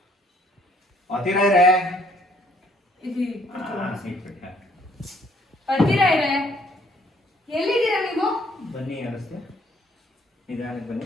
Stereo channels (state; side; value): normal; both; correlation 0.63